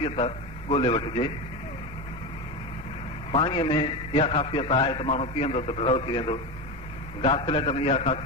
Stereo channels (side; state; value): both; normal; correlation 0.19